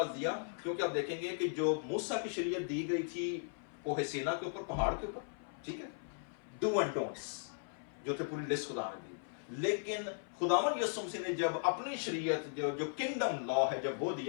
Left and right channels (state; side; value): silent; right; 53 dB below the other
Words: دیا؟ کیونکہ آپ دیکھیں گے کہ جو موسیٰ کی شریعت دی گئی تھی کوہ سینا کے اوپر، پہاڑ کے اوپر، ٹھیک ہے، ڈو اینڈ ڈونٹس جو تھے، پوری لسٹ خدا نے دی، لیکن خداوند یسوع مسیح نے جب اپنی شریعت جو کنگڈم لا ہے جب وہ